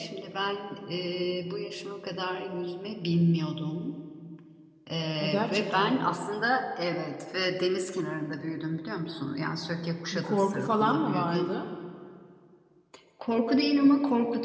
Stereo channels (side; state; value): both; identical; correlation 1.00